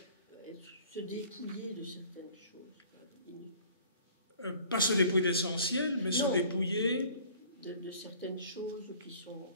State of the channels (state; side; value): inverted; both; correlation -0.50